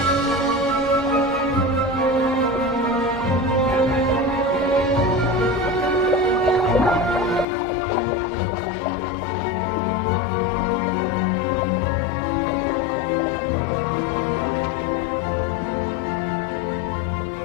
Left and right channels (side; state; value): right; drops out; at 7.5 s